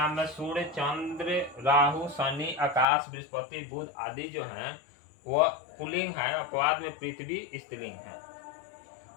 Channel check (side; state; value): right; drops out; at 2.9 s